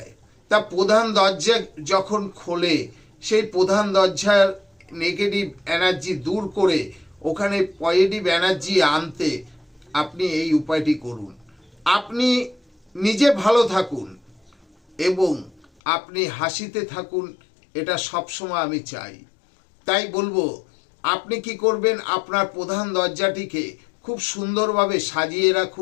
তা প্রধান দরজা যখন খোলে, সেই প্রধান দরজার নেগেটিভ এনার্জি দূর করে ওখানে পজিটিভ এনার্জি আনতে আপনি এই উপায়টি করুন। আপনি নিজে ভালো থাকুন এবং আপনি হাসিতে থাকুন, এটা সবসময় আমি চাই। তাই বলবো, আপনি কি করবেন, আপনার প্রধান দরজাটিকে খুব সুন্দরভাবে সাজিয়ে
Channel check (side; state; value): right; drops out; at 15.7 s